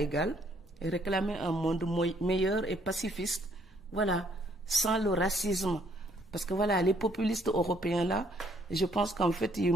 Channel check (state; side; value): normal; both; correlation 0.66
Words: et réclamer un monde meilleur et pacifiste. Voilà, sans le racisme. Parce que voilà, les populistes européens là, je pense qu'en fait, ils